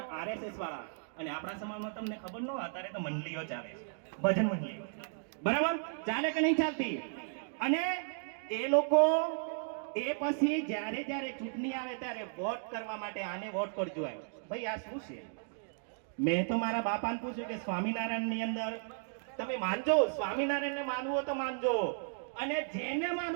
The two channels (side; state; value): left; silent; digital silence